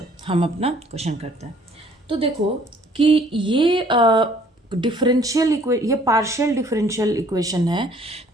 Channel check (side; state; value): both; normal; correlation 0.58